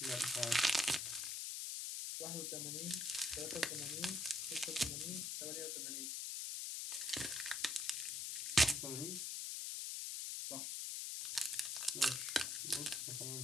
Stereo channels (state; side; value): noise; left; hiss, 2 dB below the sound